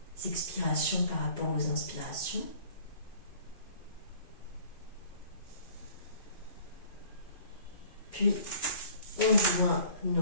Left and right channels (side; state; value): right; late; 2.5 ms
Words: expirations par rapport aux inspirations. Puis, on joint